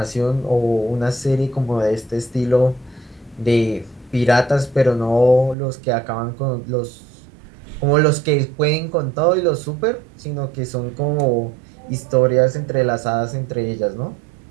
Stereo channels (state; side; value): drops out; left; at 5.6 s